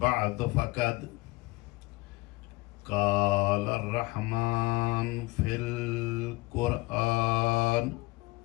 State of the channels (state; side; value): quieter; right; 22.1 dB